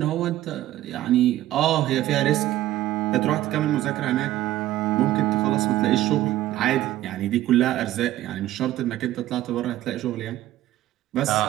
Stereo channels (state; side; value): quieter; left; 14.5 dB